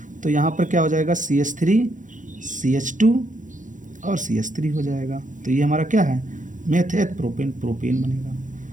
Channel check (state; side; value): late; left; 0.37 ms